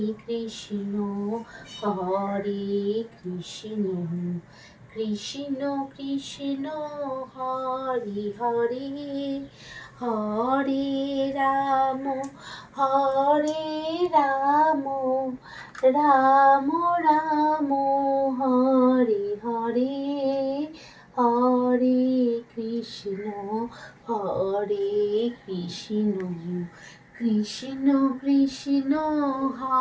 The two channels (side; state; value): both; identical; correlation 1.00